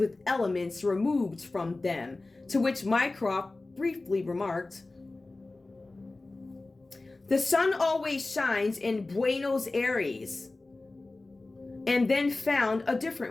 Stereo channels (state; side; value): quieter; right; 3.2 dB